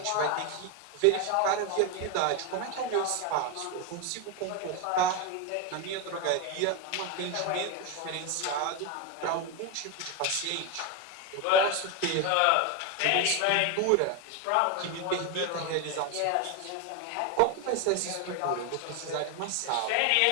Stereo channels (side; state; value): both; different; correlation 0.02